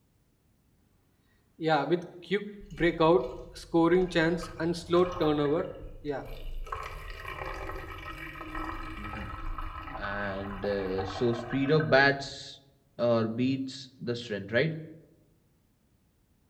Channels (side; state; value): both; identical; correlation 1.00